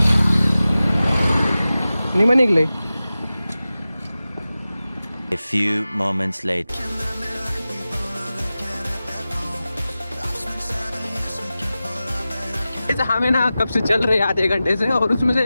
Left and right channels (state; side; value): inverted; both; correlation -0.95